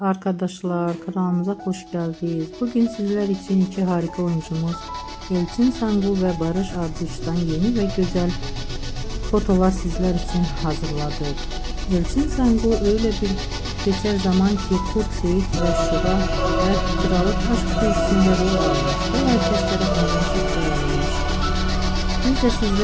kanalımıza hoş geldiniz. Bugün sizler için iki harika oyuncumuz Elçin Sangu ve Barış Arduç'tan yeni ve güzel fotolar sizler için hazırladık. Elçin Sangu öyle bir geçer zaman ki Kurt Seyit ve Şura ve Kralık Aşk dizisinde rol almış ve herkeslere çok beğenilmiş. Biz de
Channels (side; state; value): both; identical; correlation 1.00